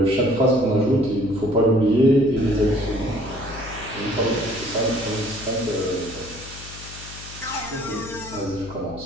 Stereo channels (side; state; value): left; noise; hum, 15 dB below the sound